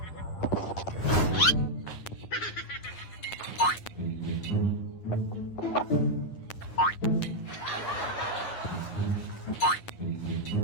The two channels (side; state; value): right; late; 9.6 ms